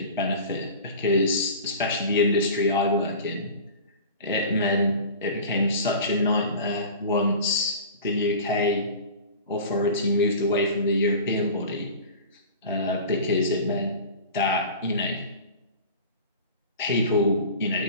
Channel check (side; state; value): both; inverted; correlation -0.37